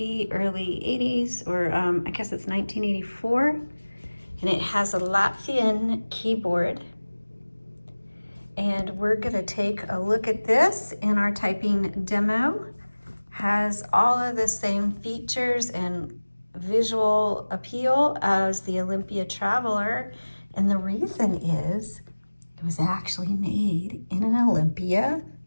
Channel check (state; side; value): inverted; both; correlation -1.00